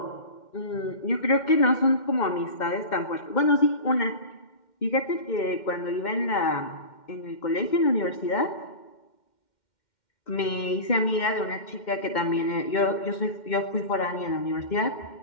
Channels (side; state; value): right; late; 2.1 ms